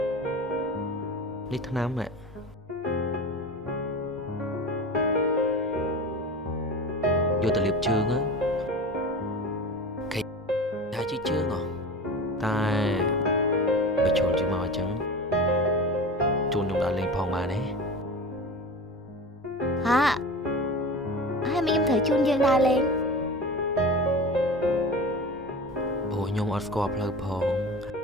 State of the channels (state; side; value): normal; both; correlation 0.32